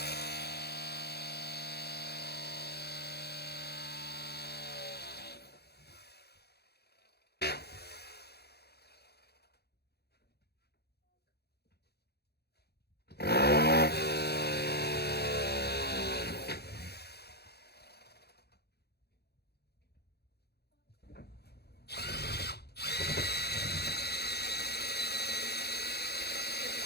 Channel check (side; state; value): right; late; 0.47 ms